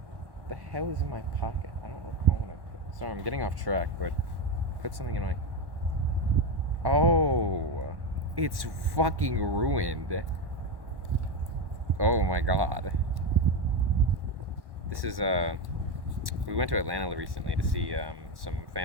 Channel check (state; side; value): late; left; 1.1 ms